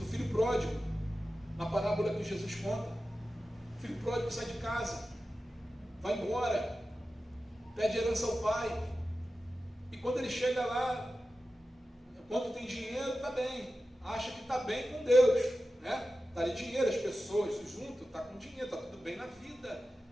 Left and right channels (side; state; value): both; normal; correlation 0.93